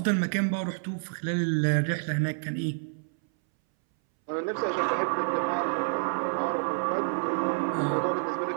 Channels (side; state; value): left; silent; 59 dB below the other